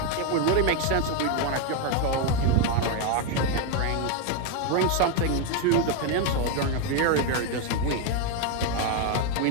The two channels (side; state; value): both; different; correlation 0.01